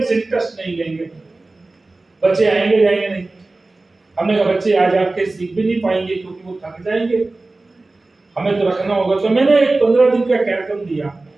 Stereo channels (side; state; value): left; quieter; 3.2 dB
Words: इंटरेस्ट नहीं लेंगे, बच्चे आएंगे जाएंगे नहीं। हमने कहा बच्चे आज आके सीख भी नहीं पाएंगे क्योंकि वो थक जाएंगे, हमें तो रखना होगा। तो मैंने एक 15 दिन का कार्यक्रम दिया